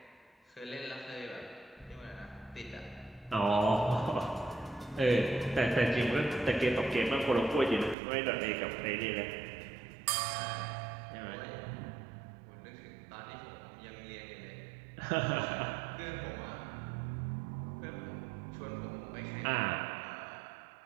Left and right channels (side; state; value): left; drops out; at 8.0 s